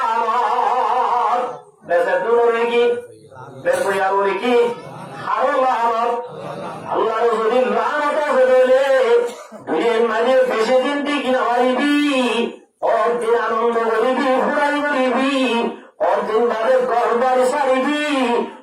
বেসে দূরে কি বেসয়া বলে কি আরো লানত আল্লাহর যদি লানত আছে বলে দুনিয়ার মাঝে বেশি দিন ঠিক না পারিবি অর্দিন আনন্দ করিবি ফুরাই করিবি অর্দিন বাদে গরবার সারিবি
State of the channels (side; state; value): both; identical; correlation 1.00